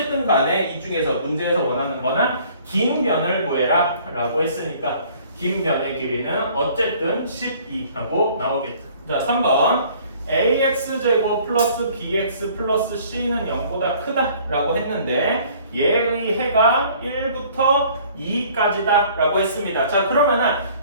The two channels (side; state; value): both; inverted; correlation -0.54